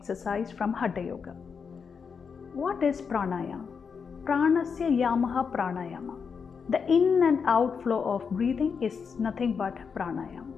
from Hatha Yoga. What is pranayama? Pranasya yamaha pranayama. The in and out flow of breathing is nothing but pranayama.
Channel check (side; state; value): right; quieter; 6.0 dB